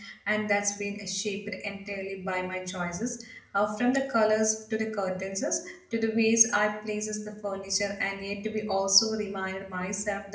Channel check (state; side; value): identical; both; correlation 1.00